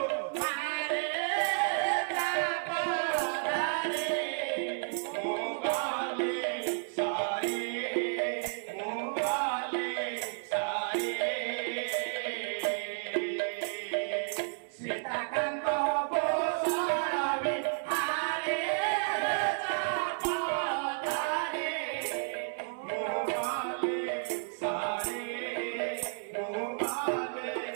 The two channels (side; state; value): left; silent; 56 dB below the other